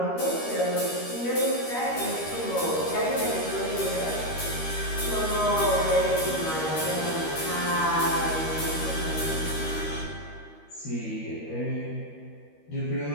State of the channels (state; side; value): late; right; 13 ms